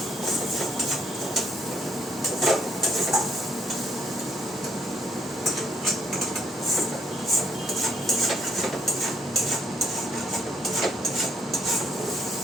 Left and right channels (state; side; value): normal; both; correlation 0.71